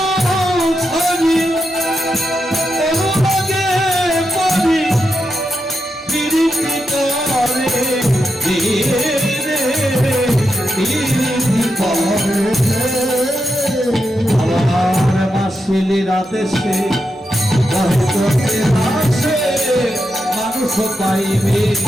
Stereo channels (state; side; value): normal; both; correlation 0.86